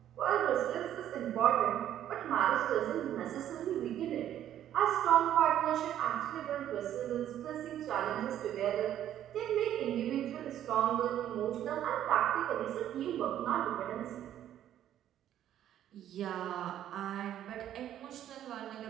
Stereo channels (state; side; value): quieter; left; 11.3 dB